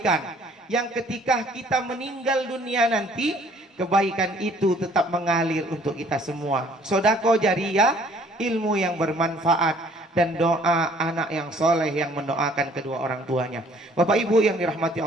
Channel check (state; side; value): normal; both; correlation 0.58